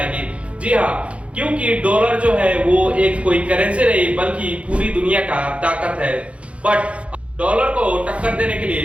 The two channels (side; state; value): left; late; 0.062 ms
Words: जी हाँ, क्योंकि डॉलर जो है वो एक कोई करेंसी नहीं बल्कि पूरी दुनिया का ताकत है। बट डॉलर को टक्कर देने के